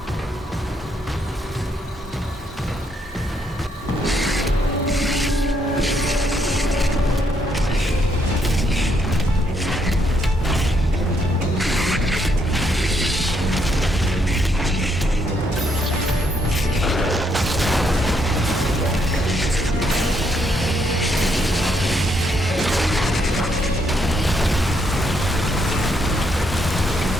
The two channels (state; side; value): normal; both; correlation 0.74